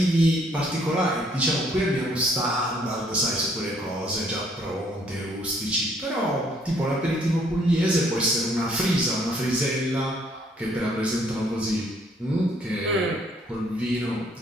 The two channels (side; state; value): both; normal; correlation 0.65